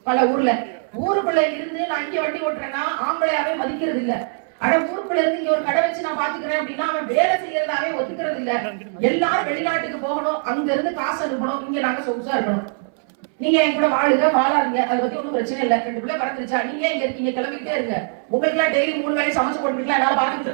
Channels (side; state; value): left; silent; 63 dB below the other